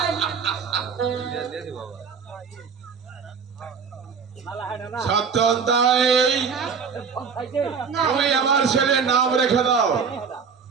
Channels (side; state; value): left; quieter; 6.0 dB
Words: সত্যতাই তুমি আমার ছেলের নাম রেখে দাও